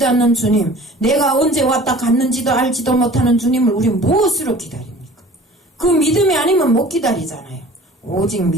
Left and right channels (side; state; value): both; normal; correlation 0.45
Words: 않는 주님, 내가 언제 왔다 갔는지도 알지도 못하는 주님을 우리는 무엇으로 기다립니까? 그 믿음이 아니면 못 기다리잖아요. 오직